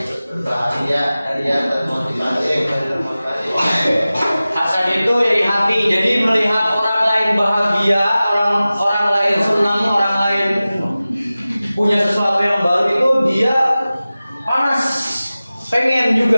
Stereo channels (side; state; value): both; inverted; correlation -0.97